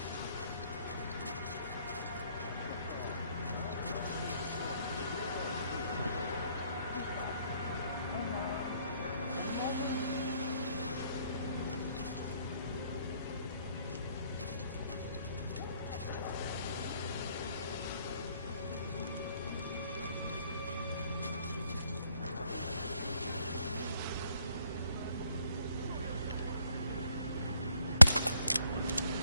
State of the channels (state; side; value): inverted; both; correlation -0.70